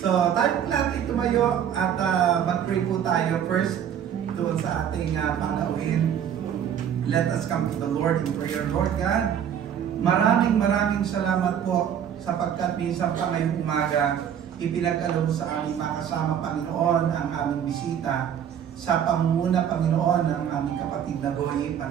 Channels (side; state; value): left; quieter; 9.0 dB